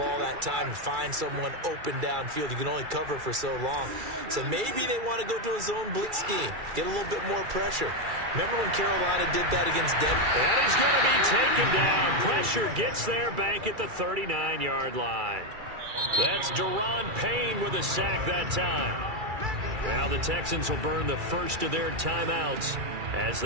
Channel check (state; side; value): late; left; 2.3 ms